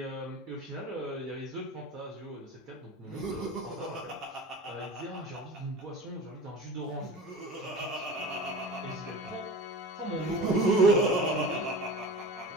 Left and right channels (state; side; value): normal; both; correlation 0.35